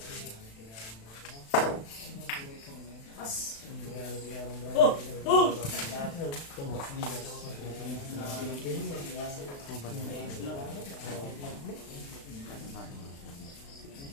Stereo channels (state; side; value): late; right; 36 ms